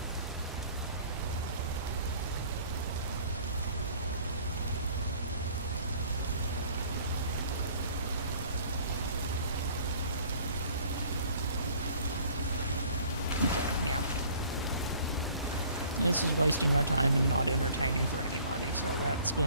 Okay, yeah. This is wasting our time and not entertaining for anybody, so that's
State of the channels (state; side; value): inverted; both; correlation -0.54